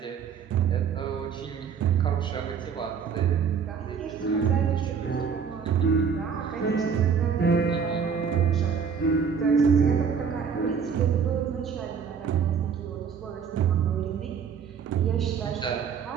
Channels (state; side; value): quieter; left; 6.6 dB